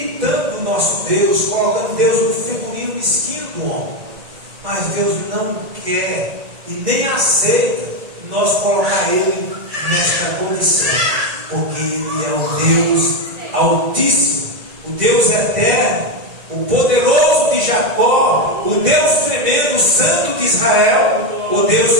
o nosso Deus, colocando Deus no figurino mesquinho do homem. Mas Deus não quer e nem aceita nós colocar Ele nesta condição, porque Ele é o Deus Altíssimo, o Deus Eterno, o poderoso de Jacó, o Deus tremendo, o Santo de Israel, o Deus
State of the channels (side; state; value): left; late; 1.9 ms